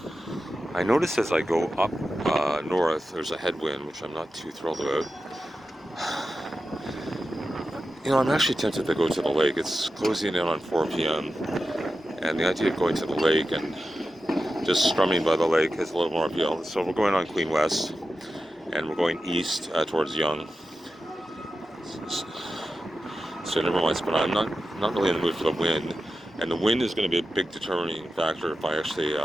I notice as I go up north, there's a headwind, which I'm not too thrilled about. I'm actually tempted to go to the lake. It's closing in on 4 p.m. And the idea of going to the lake and just strumming by the lake has a little more appeal. So we're going on Queen West, and we're going east towards Yonge. So never mind. But I'm not really in the mood for the wind, and the wind is going to be a big determining factor if I actually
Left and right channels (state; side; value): normal; both; correlation 0.92